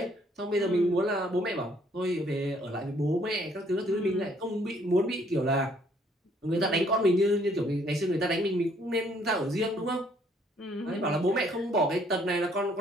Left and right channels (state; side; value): normal; both; correlation 0.64